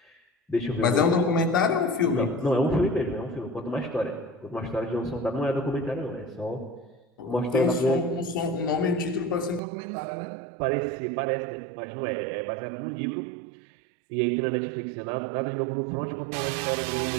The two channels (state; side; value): drops out; left; at 9.6 s